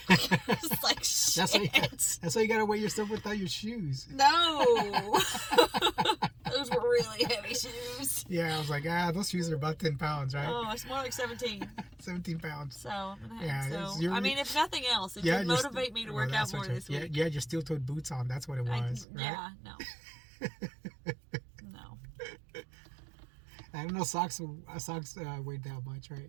I was like, shit. That's why you got to weigh yourself without your shoes. No. Those were really heavy shoes. Yeah, I was like, those shoes are about 10 pounds, right? Oh, it's more like 17. 17 pounds. So, I'm gonna Yeah, have, it's- so you're- I mean, if nothing else, it Yeah, should you're motivate me to work out that's more what this you- week. Yeah, your steel-toed boots on. That's what it was, right? Yeah, no. No. I don't know socks weighed that much,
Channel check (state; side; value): drops out; left; at 19.1 s